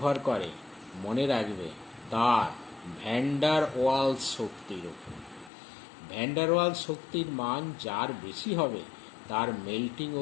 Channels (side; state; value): right; drops out; at 5.5 s